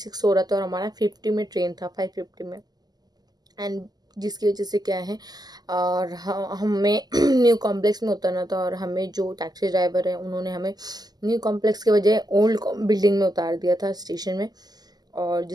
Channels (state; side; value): late; left; 0.20 ms